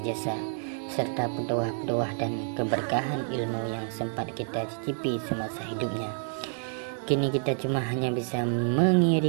jasa serta pedoah-pedoah dan keberkahan ilmu yang sempat kita cicipi semasa hidupnya. Kini kita cuma hanya bisa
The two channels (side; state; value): left; silent; 57 dB below the other